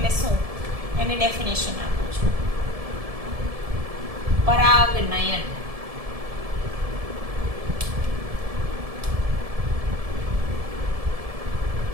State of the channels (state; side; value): late; left; 1.7 ms